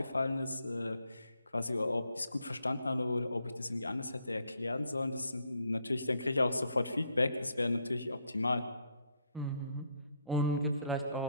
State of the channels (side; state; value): both; inverted; correlation -0.74